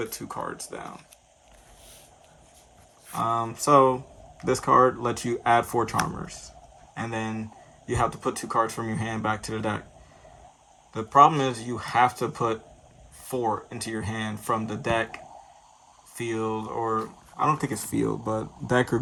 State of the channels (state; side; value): identical; both; correlation 1.00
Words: 2 cards down. So this card lets you add 4 Charmers, and then you have to put 2 cards from your hand back to the deck. The problem is you have to put 4 into your hand from the deck, field, or I don't think it's field, but deck or